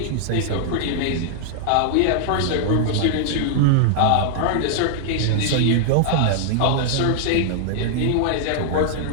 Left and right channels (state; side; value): different; both; correlation -0.01